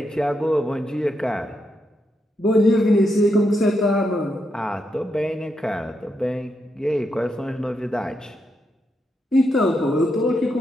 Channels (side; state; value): both; normal; correlation 0.82